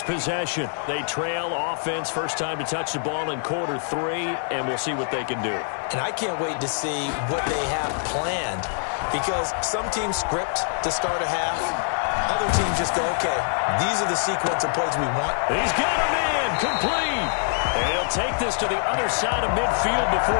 possession. They trail offense, first time to touch the ball in quarter 3, and we'll see what they can do. And I can't wait to see what they have planned, because some teams script to start a half. Other teams just go, okay, these are the sequence of plays we want. He's got a man, complete. And he'll take this to the other side of midfield before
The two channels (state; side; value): silent; right; digital silence